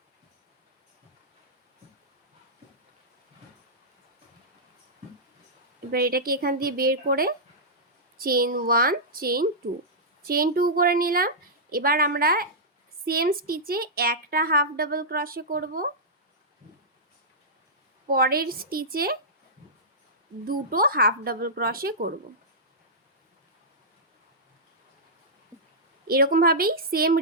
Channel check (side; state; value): both; normal; correlation -0.12